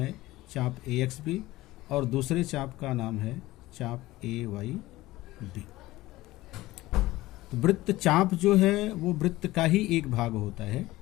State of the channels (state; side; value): quieter; right; 17.9 dB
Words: चाप AXB और दूसरे चाप का नाम है चाप AYB। तो वृत्त चाप जो है वो वृत्त का ही एक भाग होता है।